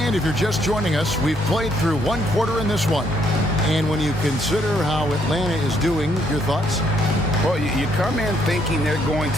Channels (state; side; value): normal; both; correlation 0.70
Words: And if you're just joining us, we've played through one quarter in this one. And when you consider how Atlanta is doing, your thoughts? Well, you come in thinking they're going